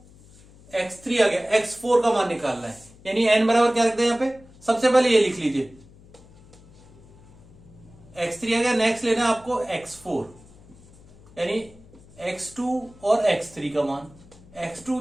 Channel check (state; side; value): noise; left; hum, 24 dB below the sound